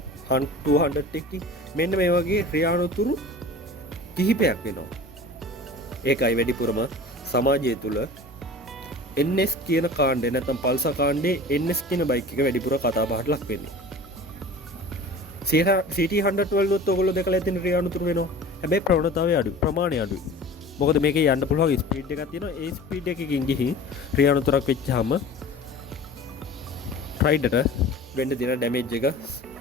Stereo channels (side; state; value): both; normal; correlation 0.39